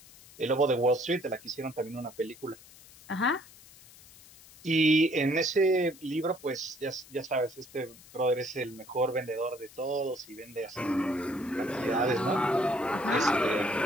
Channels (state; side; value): noise; left; hiss, 22 dB below the sound